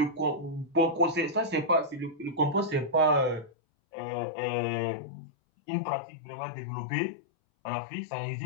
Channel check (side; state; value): right; drops out; at 3.5 s